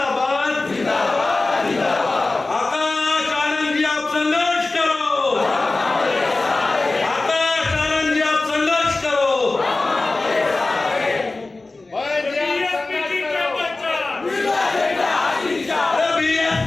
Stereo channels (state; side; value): quieter; right; 3.3 dB